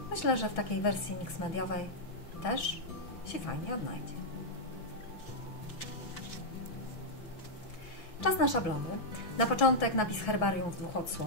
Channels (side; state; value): right; late; 6.0 ms